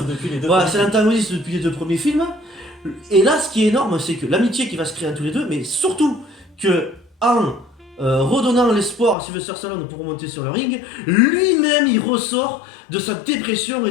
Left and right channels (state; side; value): drops out; right; at 9.2 s